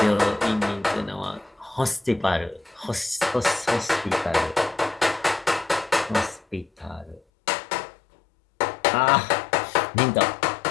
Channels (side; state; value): right; drops out; at 7.2 s